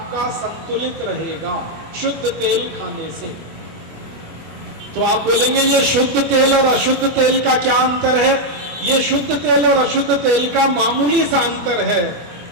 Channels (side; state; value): left; late; 25 ms